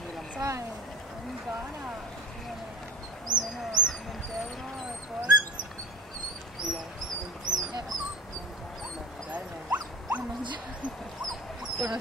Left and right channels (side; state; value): both; normal; correlation 0.33